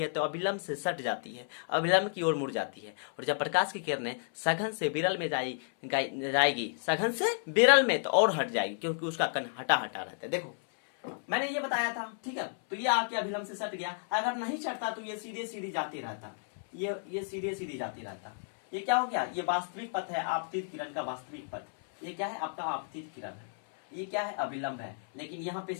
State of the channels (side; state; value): right; silent; 56 dB below the other